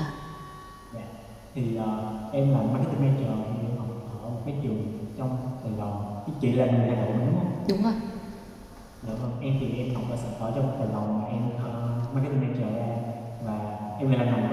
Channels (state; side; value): identical; both; correlation 1.00